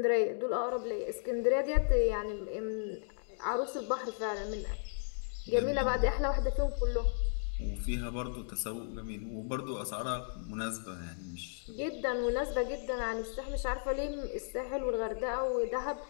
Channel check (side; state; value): right; silent; digital silence